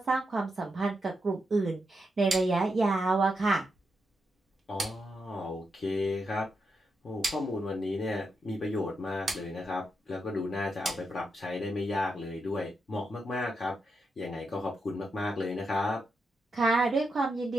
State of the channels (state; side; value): normal; both; correlation 0.84